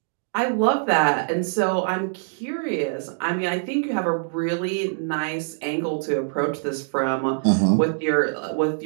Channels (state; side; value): silent; left; digital silence